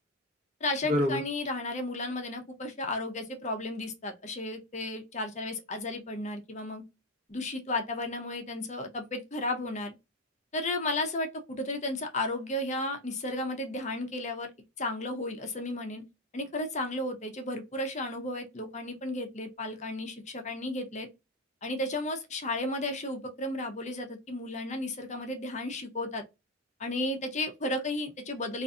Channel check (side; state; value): both; normal; correlation 0.11